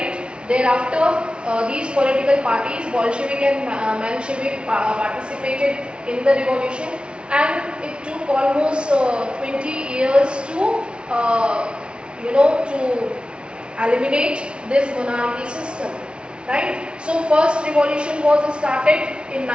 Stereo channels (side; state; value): left; late; 0.057 ms